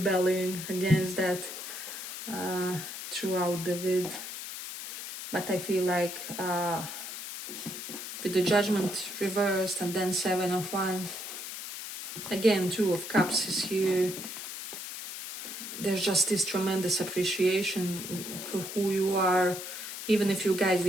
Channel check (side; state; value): left; noise; hiss, 8 dB below the sound